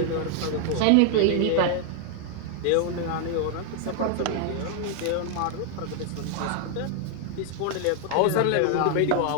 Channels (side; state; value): both; different; correlation 0.00